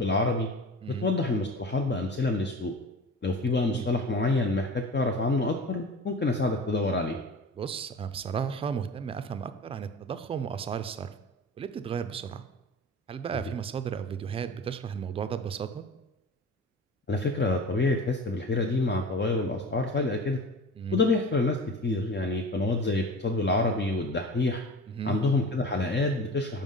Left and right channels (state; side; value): normal; both; correlation 0.35